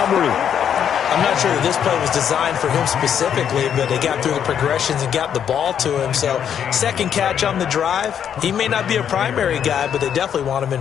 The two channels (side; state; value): right; quieter; 8.7 dB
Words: I'm not sure that this play was designed for him specifically, but they got through the progressions and got the ball to him. So second catch on the drive. He may not be a primary guy, but they definitely want him